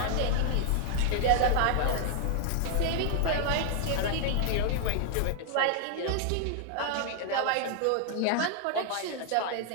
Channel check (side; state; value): both; different; correlation 0.00